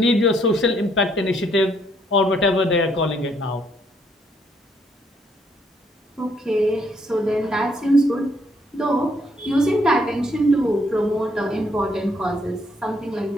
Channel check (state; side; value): normal; both; correlation 0.70